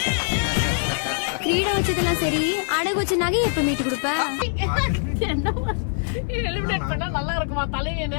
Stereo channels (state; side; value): silent; right; digital silence